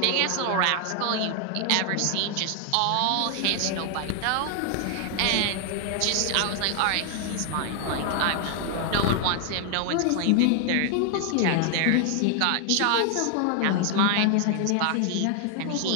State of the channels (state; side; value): different; both; correlation 0.00